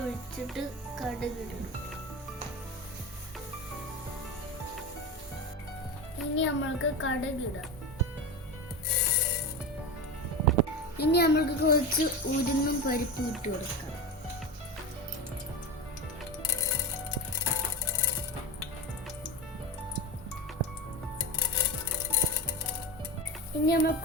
കടുകിടണം. ഇനി നമ്മൾക്ക് കടുകിടാം. ഇനി നമ്മൾക്ക് കുറച്ച് ഉഴുന്നും പരിപ്പും ഇട്ട് കൊടുക്കാം. ഇനി നമുക്ക്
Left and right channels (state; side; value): normal; both; correlation 0.22